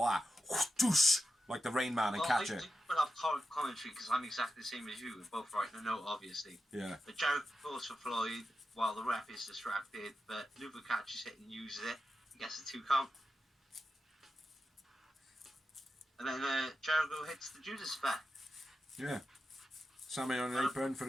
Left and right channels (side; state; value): both; normal; correlation 0.90